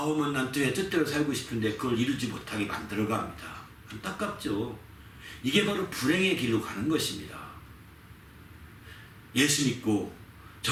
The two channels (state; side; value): identical; both; correlation 1.00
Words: 난 내 뜻대로 살고 싶은데 그걸 이루지 못하게 만들어갑니다. 안타깝죠. 이게 바로 불행의 길로 가는 것입니다. 예수 믿고